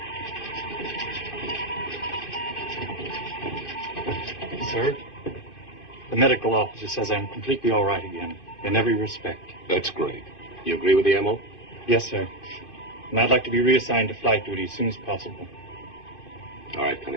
Sir, the medical officer says I'm completely all right again, in every respect. That's great. You agree with the MO? Yes, sir. And I'd like to be reassigned to flight duty as soon as possible. All right,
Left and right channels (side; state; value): right; late; 2.5 ms